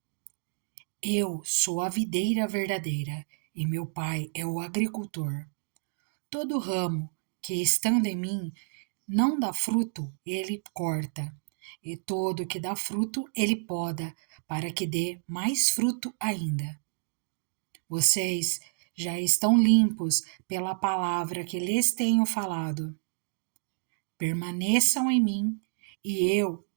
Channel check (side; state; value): left; silent; digital silence